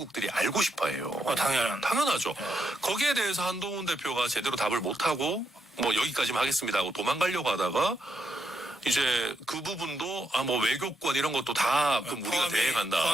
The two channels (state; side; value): normal; both; correlation 0.81